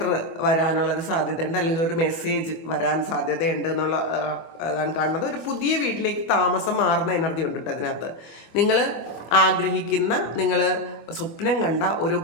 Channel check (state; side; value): late; right; 25 ms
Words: വരാനുള്ളൊരു സാധ്യതയുണ്ട്, അല്ലെങ്കിൽ ഒരു മെസ്സേജ് വരാൻ സാധ്യതയുണ്ട് എന്നുള്ള അതാണ് കാണുന്നത്. ഒരു പുതിയ വീട്ടിലേക്ക് താമസം മാറുന്ന എനർജി ഉണ്ട് കേട്ടോ അതിനകത്ത്. നിങ്ങൾ ആഗ്രഹിക്കുന്ന, നിങ്ങൾ സ്വപ്നം കണ്ട ഒരു